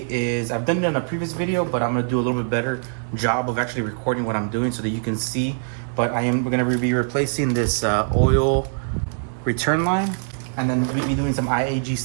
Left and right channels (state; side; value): silent; left; digital silence